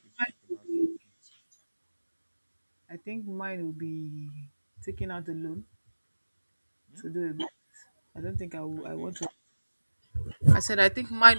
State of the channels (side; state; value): both; inverted; correlation -1.00